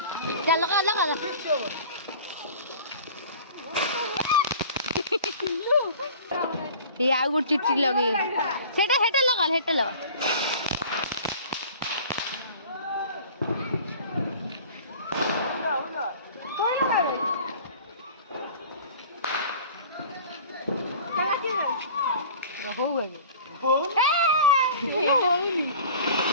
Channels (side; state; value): both; inverted; correlation -0.43